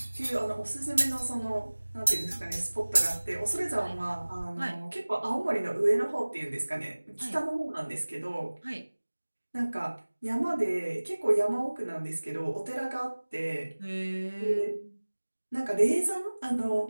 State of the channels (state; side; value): inverted; both; correlation -1.00